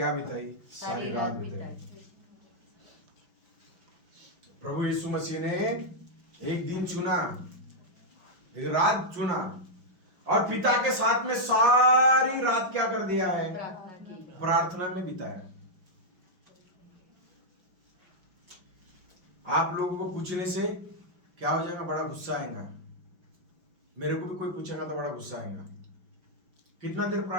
बिताई? सारी रात बिताई। प्रभु यीशु मसीह ने एक दिन चुना, एक रात चुना और पिता के साथ में सारी रात क्या कर दिया है? प्रार्थना में बिताया। आप लोगों को पूछने से क्या हो जाएगा? बड़ा गुस्सा आएगा। मेरे को भी कोई पूछेगा तो बड़ा गुस्सा आएगा। कितना देर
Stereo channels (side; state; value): left; late; 5.6 ms